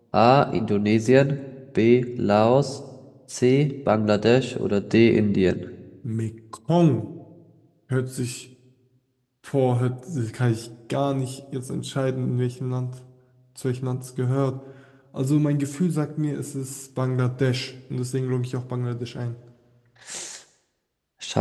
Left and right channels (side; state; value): both; identical; correlation 1.00